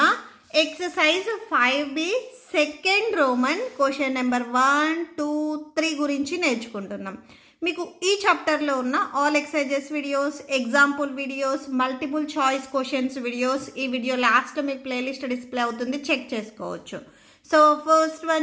exercise 5B second Roman question number 1, 2, 3 గురించి నేర్చుకుంటున్నాం. మీకు ఈ చాప్టర్లో ఉన్న all exercises videos, example videos, multiple choice questions videos ఈ వీడియో లాస్ట్లో మీకు ప్లేలిస్ట్ డిస్ప్లే అవుతుంది, చెక్ చేసుకోవచ్చు. సో ఫస్ట్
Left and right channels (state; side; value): identical; both; correlation 1.00